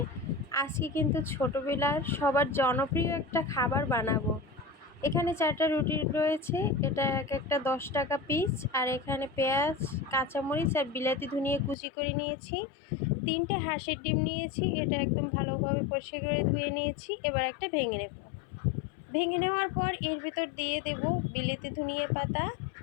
আজকে কিন্তু ছোটোবেলার সবার জনপ্রিয় একটা খাবার বানাবো। এখানে 4টা রুটি রয়েছে, এটা এক একটা 10 টাকা পিস। আর এখানে পেঁয়াজ, কাঁচামরিচ আর বিলাতি ধনিয়া কুচি করে নিয়েছি। 3টে হাঁসের ডিম নিয়েছি, এটা একদম ভালোভাবে পরিষ্কার করে ধুয়ে নিয়েছি। এবার একটা ভেঙে নেব। ভেঙে নেওয়ার পর এর ভিতর দিয়ে দেব বিলেতি ধনিয়া পাতা,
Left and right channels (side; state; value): right; drops out; at 11.8 s